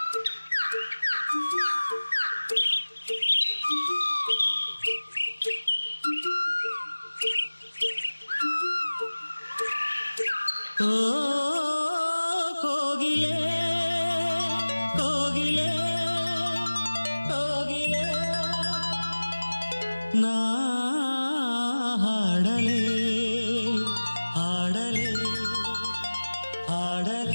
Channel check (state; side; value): inverted; both; correlation -1.00